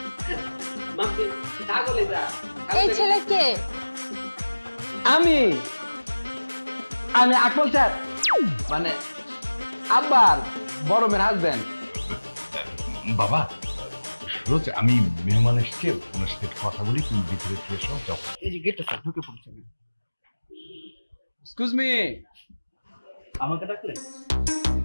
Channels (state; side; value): inverted; both; correlation -1.00